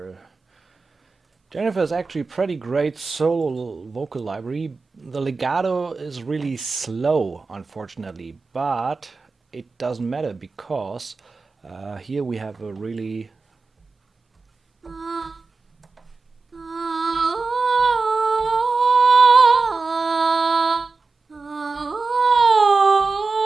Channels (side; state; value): left; quieter; 4.1 dB